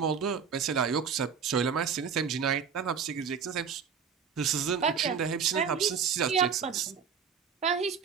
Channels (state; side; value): quieter; left; 6.6 dB